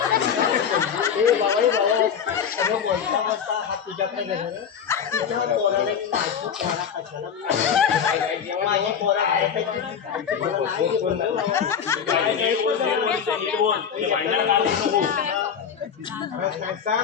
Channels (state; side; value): quieter; right; 7.6 dB